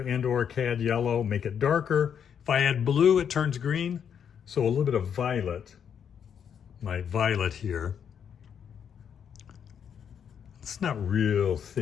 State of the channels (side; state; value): right; quieter; 8.0 dB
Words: cad yellow, make it darker. If I add blue, it turns green. So a little bit of violet, my violet here. It's not real